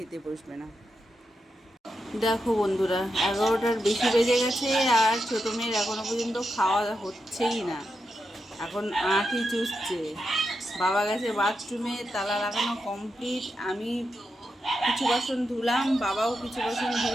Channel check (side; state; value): both; normal; correlation 0.87